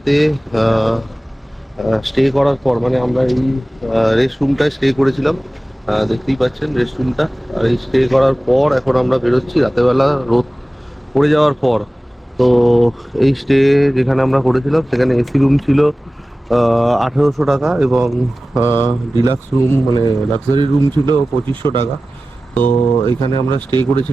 স্টে করার পর, মানে আমরা এই রেস্ট রুমটায় স্টে করেছিলাম, দেখতেই পাচ্ছেন রেস্ট রুমটা। আর এই স্টে করার পর এখন আমরা বেরোচ্ছি রাতেরবেলা রোদ পড়ে যাওয়ার পর। তো এই স্টে যেখানে আমরা করেছিলাম সেখানে এসি রুম ছিল, 1800 টাকা, এবং ডিলাক্স রুম মানে লাক্সারি রুম ছিল 2500 টাকা। তো এখানে আমরা স্টে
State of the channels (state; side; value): normal; both; correlation 0.96